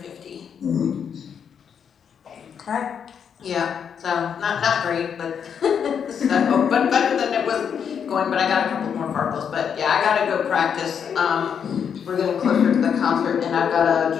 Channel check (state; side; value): quieter; right; 7.5 dB